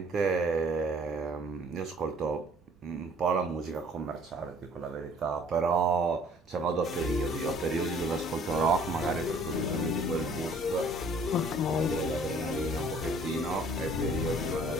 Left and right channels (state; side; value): normal; both; correlation 0.56